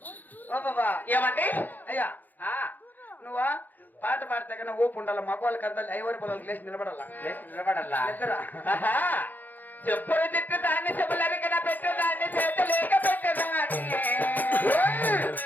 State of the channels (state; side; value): late; right; 0.085 ms